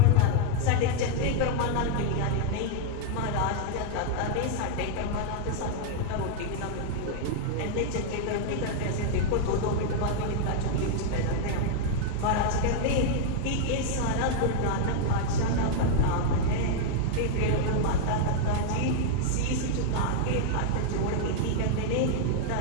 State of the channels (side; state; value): both; different; correlation 0.00